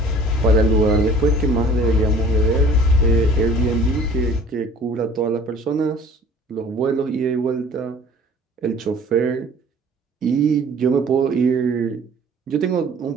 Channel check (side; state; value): both; normal; correlation 0.49